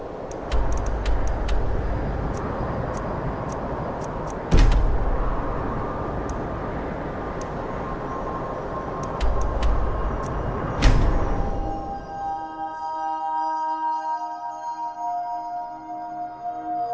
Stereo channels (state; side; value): identical; both; correlation 1.00